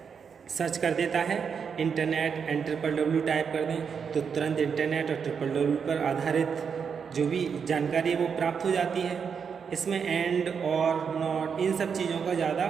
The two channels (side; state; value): left; quieter; 6.5 dB